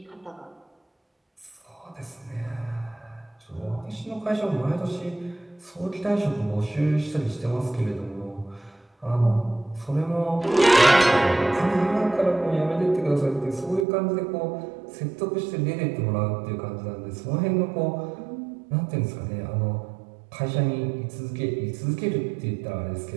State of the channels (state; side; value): drops out; left; at 13.9 s